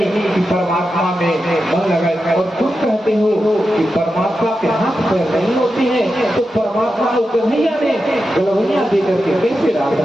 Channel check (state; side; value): normal; both; correlation 0.90